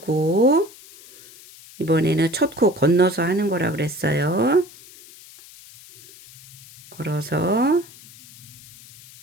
이번에는 첫 코 건너서 하는 거라 그랬어요. 걸어서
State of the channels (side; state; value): left; noise; hiss, 21 dB below the sound